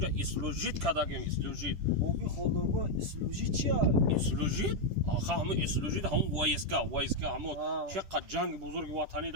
اسلوژیت کردم اسلوژیت بابی خالدارگاه اسلوژی چیه؟ اسلوژیت آخه همون اسلوژیت همون وایسکا همون چقدر جنگ بزرگ وطنی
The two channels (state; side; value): late; left; 10 ms